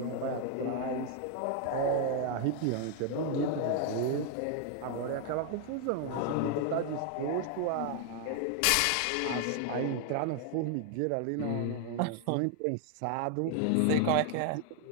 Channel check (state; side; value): different; both; correlation 0.00